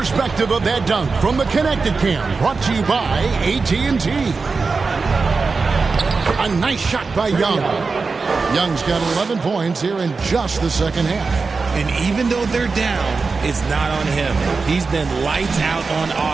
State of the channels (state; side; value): quieter; left; 4.4 dB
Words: of that dunk from the Connected Cam, brought to you by AT&T. A nice shot by Young. Young's got 11 points here in just the second half. And even though they're down, it's not on him. He's been lights out on